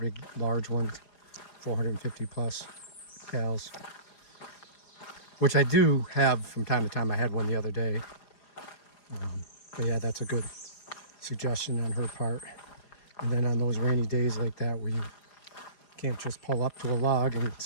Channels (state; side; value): late; right; 4.9 ms